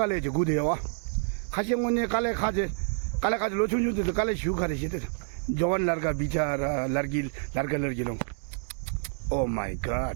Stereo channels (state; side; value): silent; left; 59 dB below the other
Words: जो गुदे हुआ खासे मुन्ने काले खाजे लोचुन जुते तो काले शू खाते थे जवान लड़का बिचारा लड़की लोग। Oh my